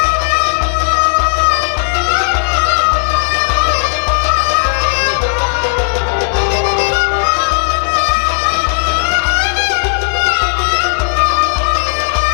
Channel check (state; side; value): silent; right; digital silence